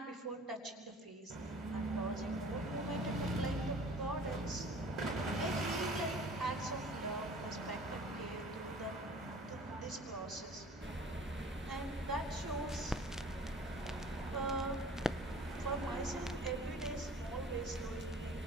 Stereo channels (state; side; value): normal; both; correlation 0.47